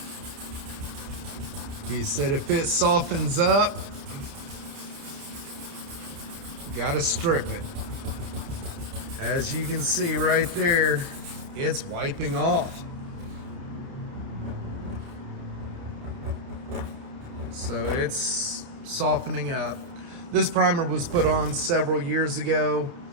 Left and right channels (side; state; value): left; late; 29 ms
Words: He said if it softens up, you gotta strip it. As you can see right there, it's wiping off. So it's softening up. This primer was put on several years ago,